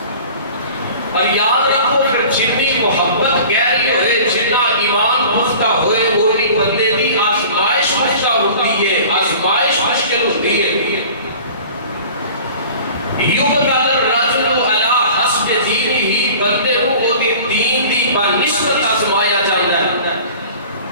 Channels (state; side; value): inverted; both; correlation -0.43